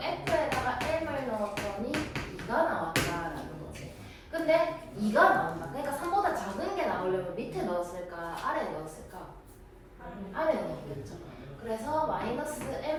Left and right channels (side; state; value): both; identical; correlation 1.00